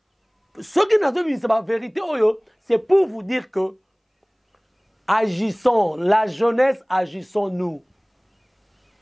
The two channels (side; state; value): both; identical; correlation 1.00